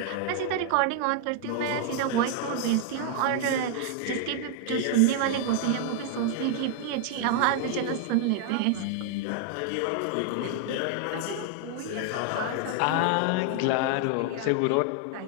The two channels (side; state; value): both; different; correlation 0.00